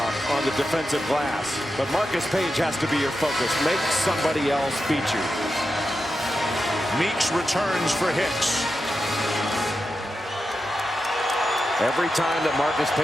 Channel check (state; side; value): normal; both; correlation 0.89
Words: on the defensive glass. But Marcus Page has to be your focus. Make somebody else beat you. Meeks returns for Hicks. Every time that Marcus